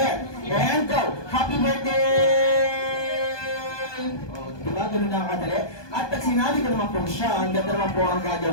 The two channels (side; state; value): right; late; 1.2 ms